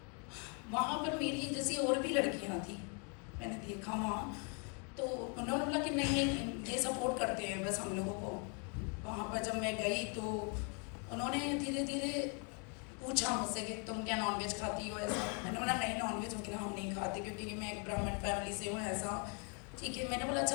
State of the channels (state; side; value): quieter; right; 37.2 dB